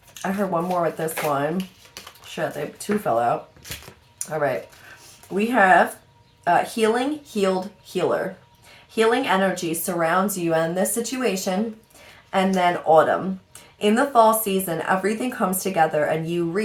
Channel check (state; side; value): identical; both; correlation 1.00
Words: I heard one more with this one. Shit, two fell out. All right. We have healing, healed, healer. Healing energy surrounds you in this situation. And then autumn. In the fall season, everything comes together and you